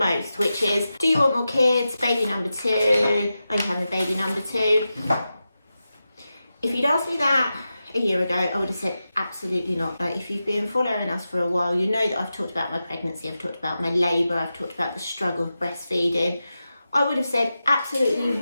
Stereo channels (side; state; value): both; inverted; correlation -0.91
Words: which is, do you want more kids? Baby number 2. Are you having a baby number 2? If you'd asked me that a year ago, I would have said absolutely not. Like, if you've been following us for a while, you know that I've talked about my pregnancy, I've talked about my labour, I've talked about the struggle of breastfeeding. I would have said absolutely